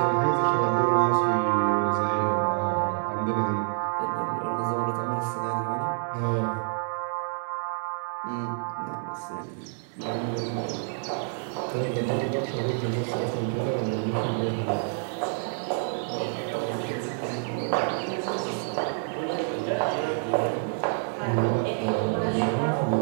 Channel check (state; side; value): silent; left; 57 dB below the other